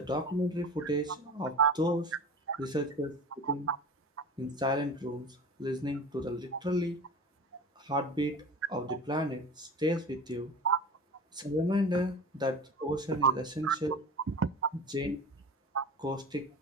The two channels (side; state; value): both; normal; correlation 0.35